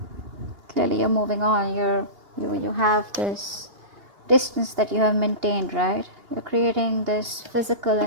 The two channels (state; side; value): late; left; 2.8 ms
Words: Clearly you're moving on. You have this distance that you have maintained, right? You're creating this physical